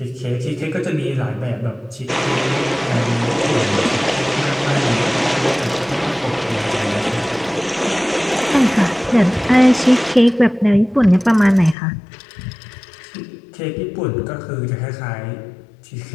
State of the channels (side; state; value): right; drops out; at 11.8 s